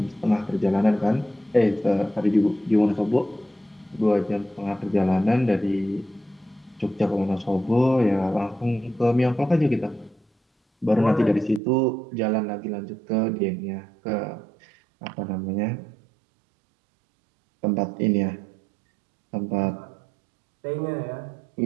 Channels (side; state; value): left; drops out; at 11.6 s